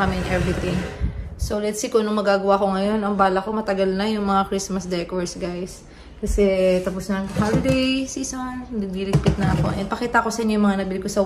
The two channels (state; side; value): identical; both; correlation 1.00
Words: kami and everything. So, let's see kung anong magagawa ko ngayon. Ang bala ko matagal na yung mga Christmas decors, guys. Kasi tapos na ang holiday season. Nagdiligpit na ako. And pakita ko sa inyo yung mga nabili ko sa